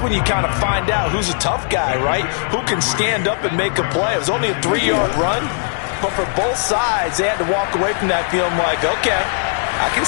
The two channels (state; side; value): silent; right; 67 dB below the other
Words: you kind of find out who's a tough guy, right? Who can stand up and make a play. It was only a 3-yard run, but for both sides, they had to walk away from that feeling like, okay, I can